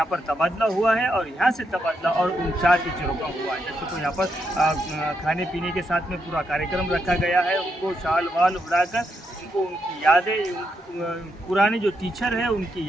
पर तबादला हुआ है और यहाँ से तबादला और उन 4 टीचरों का हुआ है। जैसे तो यहाँ पर खाने पीने के साथ में पूरा कार्यक्रम रखा गया है। उनको शाल वाल उड़ाकर उनको उनकी यादें, पुराने जो टीचर हैं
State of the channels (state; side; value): normal; both; correlation 0.81